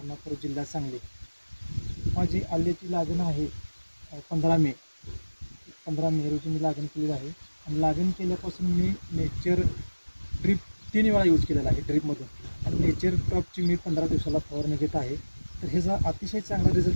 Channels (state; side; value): inverted; both; correlation -1.00